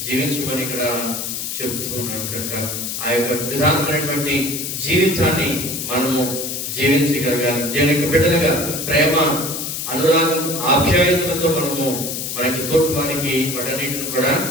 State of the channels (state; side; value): noise; left; hiss, 4 dB below the sound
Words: జీవించమని ఇక్కడ చెబుతూ ఉన్నాడు. కనుక ఆ యొక్క విధానమైనటువంటి జీవితాన్ని మనము జీవించగలగాలి. దేవుని యొక్క బిడ్డలుగా ప్రేమ, అనురాగం, ఆప్యాయతలతో మనము మన యొక్క తోటి వారికి వాటన్నిటిని కూడా